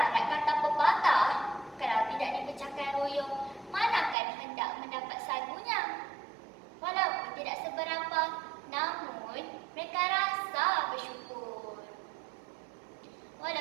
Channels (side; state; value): left; drops out; at 4.2 s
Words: kata pepatah, kalau tidak dipecahkan royong, manakan hendak mendapat sagunya. Walaupun tidak seberapa, namun mereka rasa bersyukur.